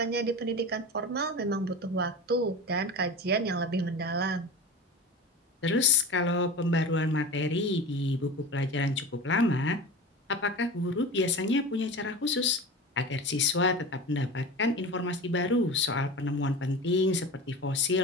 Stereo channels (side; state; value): both; normal; correlation 0.31